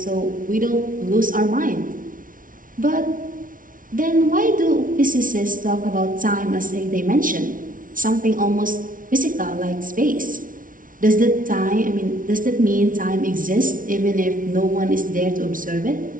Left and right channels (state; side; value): late; left; 0.39 ms